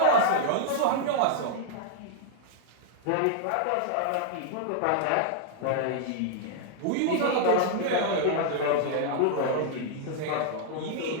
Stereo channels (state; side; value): different; both; correlation -0.01